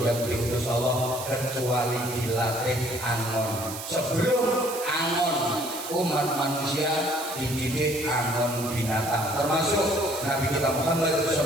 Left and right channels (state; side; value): noise; right; hiss, 9 dB below the sound